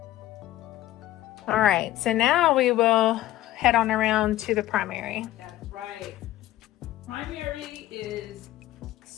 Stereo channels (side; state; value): right; quieter; 14.8 dB